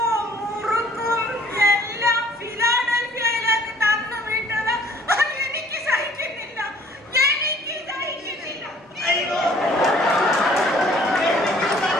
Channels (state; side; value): normal; both; correlation 0.56